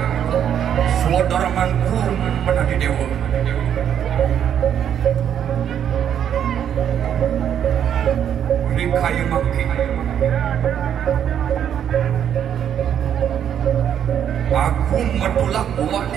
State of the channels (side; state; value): left; quieter; 9.2 dB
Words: saudara manku menadi dewa ini kayu makin aku metulak buat